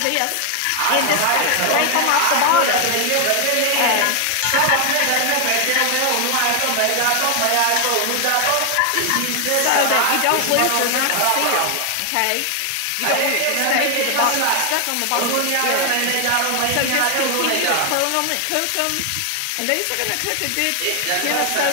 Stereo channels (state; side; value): different; both; correlation 0.00